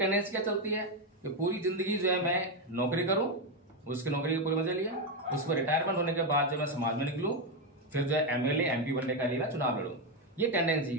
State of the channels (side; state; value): both; normal; correlation 0.07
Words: क्या चलती है कि पूरी जिंदगी जो है मैं नौकरी करूं, उसकी नौकरी के पूरे मजे लिया, उस पर रिटायरमेंट होने के बाद जो मैं समाज में निकलूं, फिर जो है MLA MP बनने का लिए मैं चुनाव लड़ूं। ये टेंडेंसी